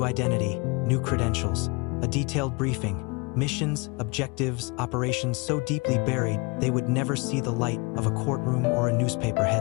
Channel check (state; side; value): quieter; right; 29.1 dB